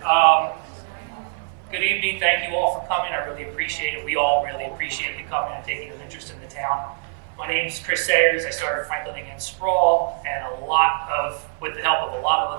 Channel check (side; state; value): left; silent; 58 dB below the other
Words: Good evening. Thank you all for coming. I really appreciate it. We all really appreciate you coming and taking an interest in the town. My name is Chris Sayers. I started Franklin against Sprawl, and with the help of a lot of